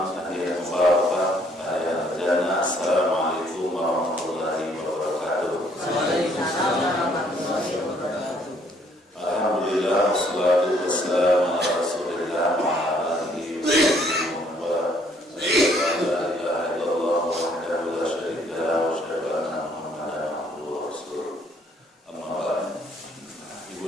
tahiyatan mubarakah, tahiyatan jannah. Assalamualaikum warahmatullahi wabarakatuh. Waalaikumsalam warahmatullahi wabarakatuh. Alhamdulillah, wassalatu wassalamu ala Rasulillah wa ala alihi wa sahbihi wa man wala. La ilaha illallah wahdahu la syarika lahu wa asyhadu anna Muhammadan abduhu wa rasuluh. Amma ba'd. Ibu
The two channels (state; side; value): normal; both; correlation 0.65